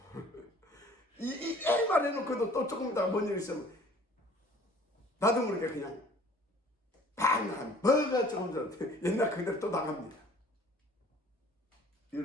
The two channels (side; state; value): both; normal; correlation 0.52